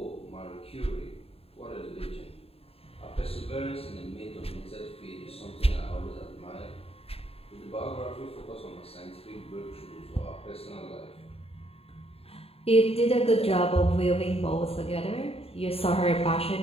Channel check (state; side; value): late; right; 0.28 ms